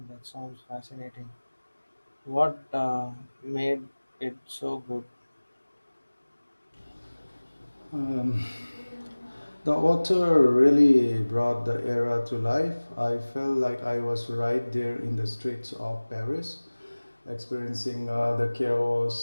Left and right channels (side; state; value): both; inverted; correlation -1.00